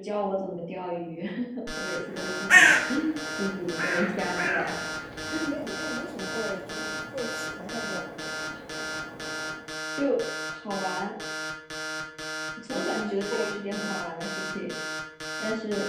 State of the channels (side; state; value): both; identical; correlation 1.00